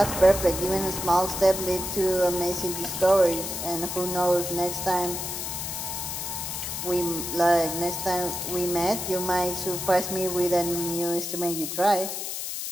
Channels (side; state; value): left; noise; hiss, 5 dB below the sound